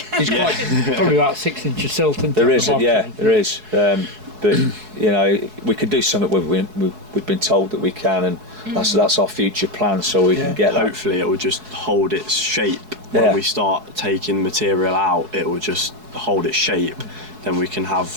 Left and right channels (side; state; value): left; late; 4.7 ms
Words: quite probably about 6 inches silt. There is, there is. But we could do something. We've been told that we can, and that's our future plan. So we can get. Hopefully, it will just hold its shape when we start taking material out. It will just hold its shape. Then we can